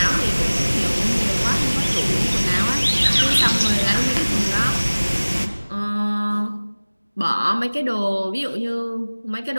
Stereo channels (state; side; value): inverted; both; correlation -1.00